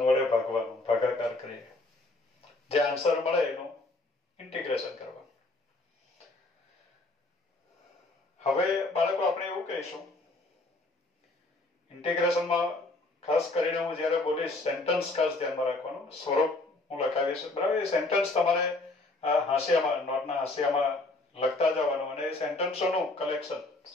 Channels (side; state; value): right; quieter; 3.0 dB